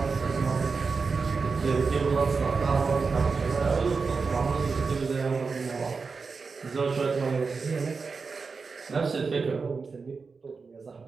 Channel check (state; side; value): quieter; left; 4.8 dB